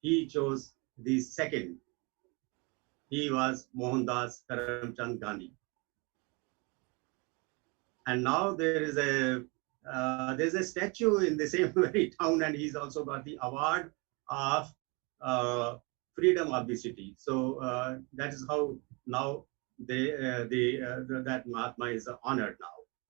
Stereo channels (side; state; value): left; quieter; 29.4 dB